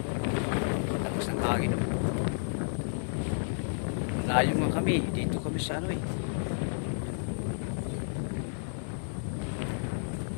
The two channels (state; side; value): silent; right; digital silence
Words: Tapos ng hangin. Layo nga kami. Dito kami sa ano eh.